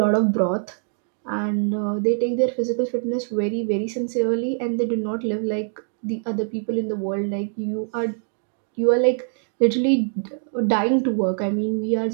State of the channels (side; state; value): left; silent; digital silence